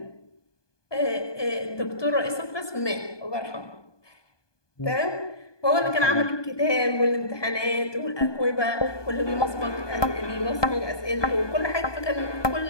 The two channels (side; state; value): right; late; 1.2 ms